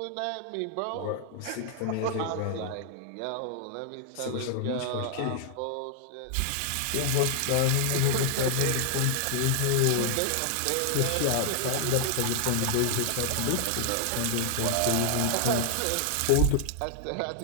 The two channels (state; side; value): different; both; correlation 0.00